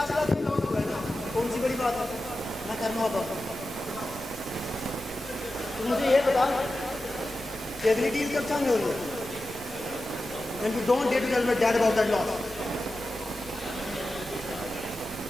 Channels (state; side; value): normal; both; correlation 0.92